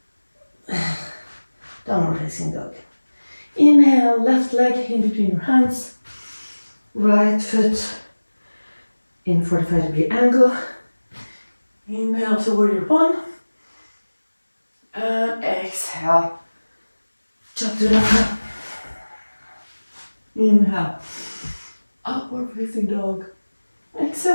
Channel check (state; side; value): inverted; both; correlation -1.00